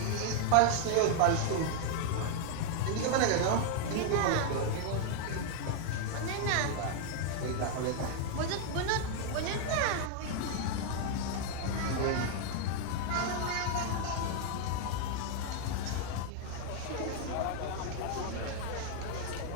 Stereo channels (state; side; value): different; both; correlation 0.00